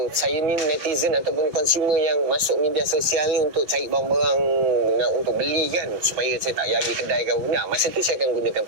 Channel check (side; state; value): left; late; 6.3 ms